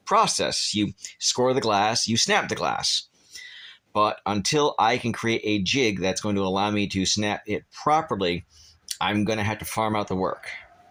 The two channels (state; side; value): identical; both; correlation 1.00